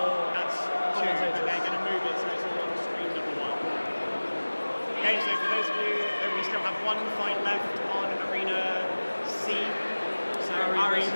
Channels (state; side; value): inverted; both; correlation -1.00